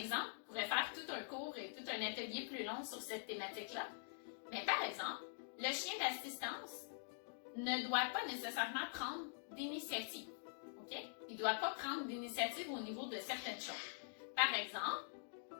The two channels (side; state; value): right; silent; digital silence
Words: on pourrait faire tout un cours et tout un atelier plus long sur cette thématique-là. Mais par exemple, le chien d'assistance ne doit pas nécessairement prendre d'initiative. Okay? Il ne doit pas prendre d'initiative au niveau de certaines choses. Par exemple,